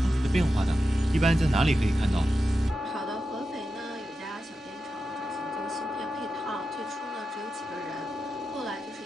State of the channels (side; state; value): both; normal; correlation 0.90